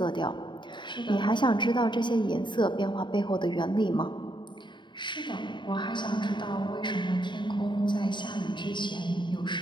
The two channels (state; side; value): late; right; 0.23 ms